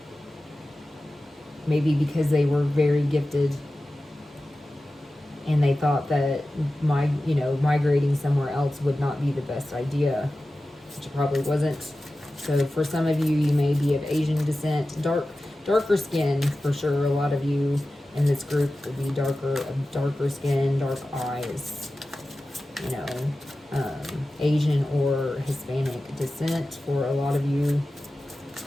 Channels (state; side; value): normal; both; correlation 0.95